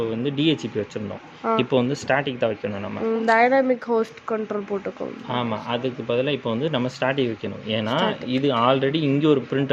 வந்து டிஹெச்பி வச்சுருந்தோம். இப்போ வந்து ஸ்டாட்டிக் தான் வைக்கணும். நம்ம டைனாமிக் ஹோஸ்ட் கண்ட்ரோல் போட்டுக்கோம். ஆமாம், அதுக்கு பதிலாக இப்போ வந்து நம்ம ஸ்டாட்டிக் வைக்கணும். ஏன்னா இது ஆல்ரெடி இங்கே ஒரு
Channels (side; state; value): both; identical; correlation 1.00